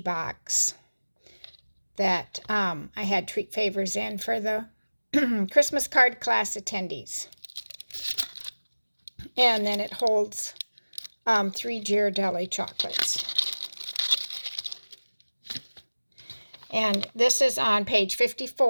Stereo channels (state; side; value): inverted; both; correlation -1.00